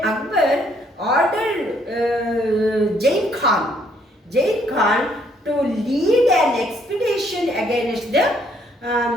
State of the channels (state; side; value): normal; both; correlation 0.67